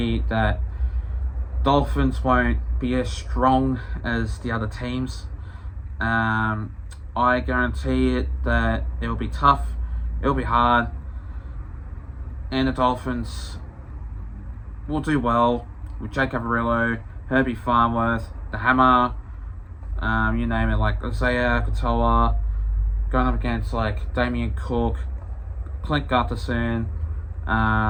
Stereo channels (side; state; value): both; identical; correlation 1.00